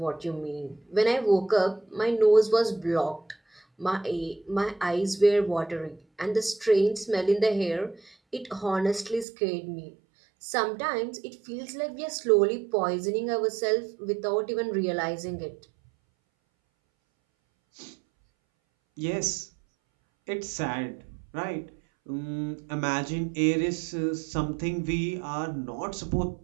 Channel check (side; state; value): left; drops out; at 9.2 s